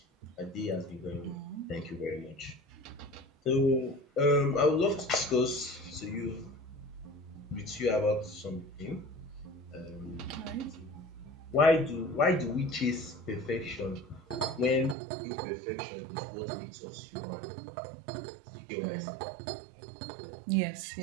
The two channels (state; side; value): drops out; left; at 15.0 s